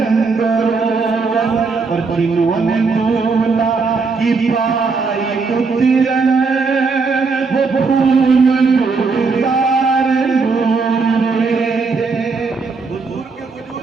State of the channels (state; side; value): quieter; left; 4.5 dB